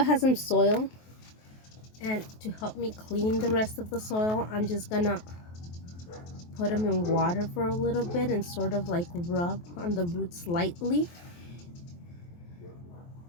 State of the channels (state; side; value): late; right; 23 ms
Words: some soil, and to help me clean the rest of the soil, I'm just gonna put them in water for a little bit and sort of like rub on the roots lightly.